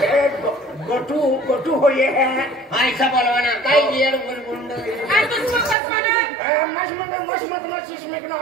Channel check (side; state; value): left; drops out; at 5.8 s